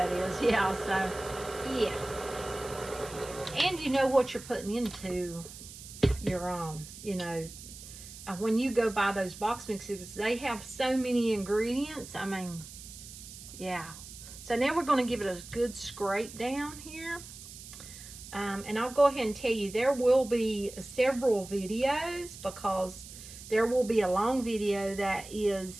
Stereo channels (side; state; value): right; noise; hiss, 14 dB below the sound